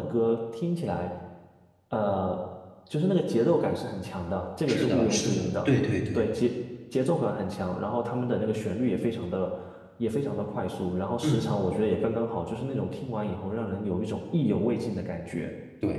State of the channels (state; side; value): identical; both; correlation 1.00